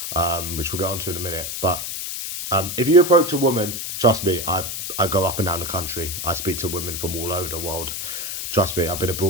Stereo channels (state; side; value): noise; left; hiss, 5 dB below the sound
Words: which we'll get onto in a minute. But if you approach a woman, trust me, I go up and down the country. I speak to women from all over the world. Trust me, I've been